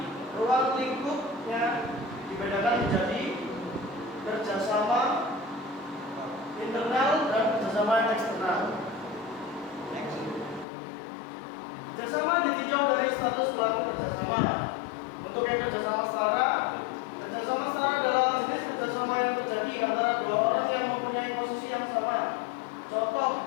ruang lingkupnya dibedakan menjadi kerjasama internal dan kerjasama eksternal. Kerjasama ditinjau dari status pelaku kerjasama. Untuk yang kerjasama setara adalah jenis kerjasama yang terjadi antara dua orang yang mempunyai posisi yang sama. Contoh,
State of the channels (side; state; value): right; drops out; at 10.7 s